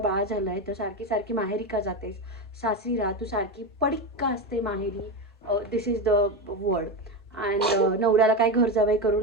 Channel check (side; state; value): both; normal; correlation 0.16